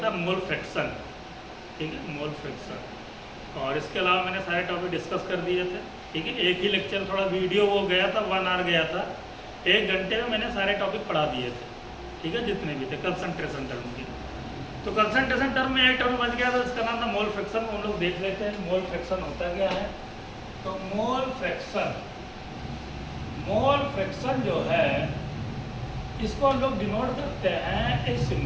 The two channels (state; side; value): identical; both; correlation 1.00